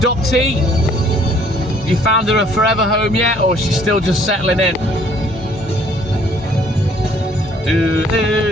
You found her a forever home yet, or she's still just settling in?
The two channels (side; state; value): both; normal; correlation 0.60